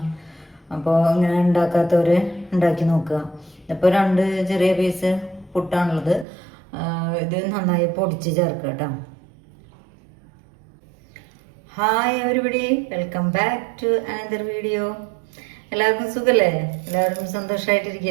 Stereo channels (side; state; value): left; drops out; at 6.2 s